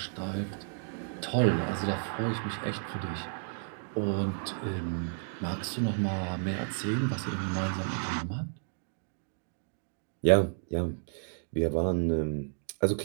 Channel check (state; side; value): silent; left; digital silence